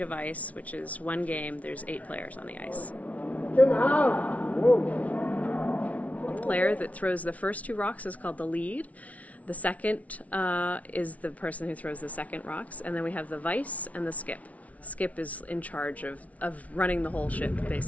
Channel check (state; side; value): late; right; 0.068 ms